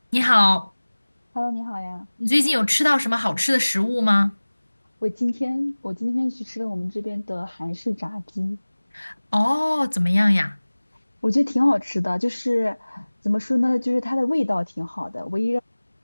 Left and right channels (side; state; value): both; inverted; correlation -1.00